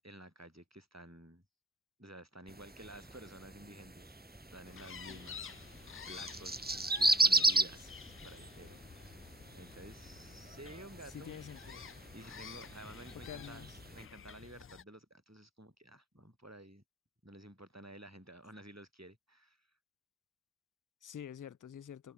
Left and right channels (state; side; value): normal; both; correlation 0.45